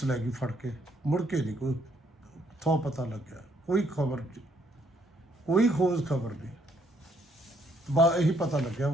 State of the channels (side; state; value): both; normal; correlation 0.70